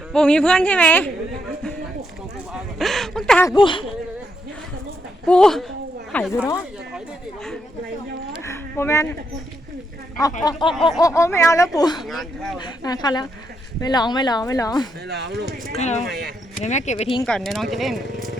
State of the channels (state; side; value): normal; both; correlation 0.79